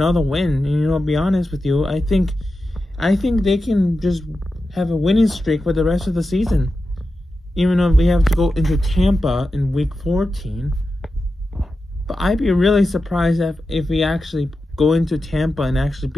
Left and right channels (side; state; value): both; normal; correlation 0.91